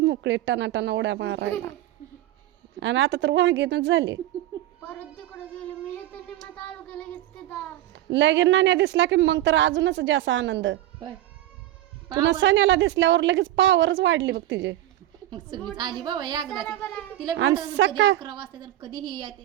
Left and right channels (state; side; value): quieter; left; 14.2 dB